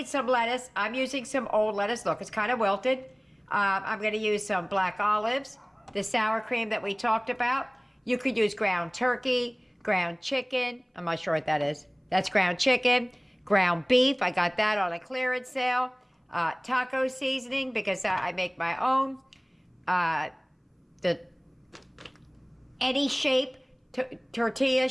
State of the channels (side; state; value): both; identical; correlation 1.00